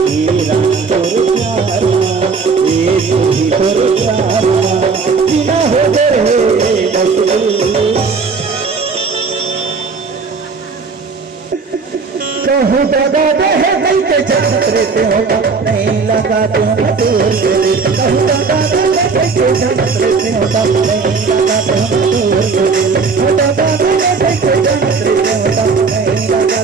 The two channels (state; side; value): quieter; left; 4.8 dB